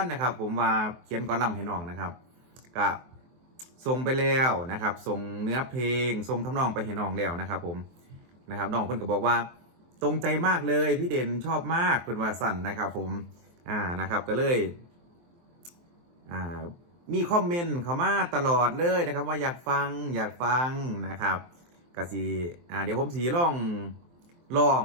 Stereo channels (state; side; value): late; left; 23 ms